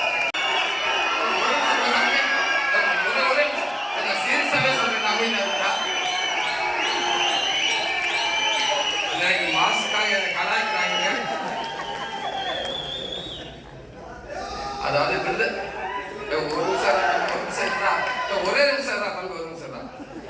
அதாவது ஒரு ஒரே நிமிஷம் தான் தம்பி, ஒரு நிமிஷம் தான்.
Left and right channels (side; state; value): both; identical; correlation 1.00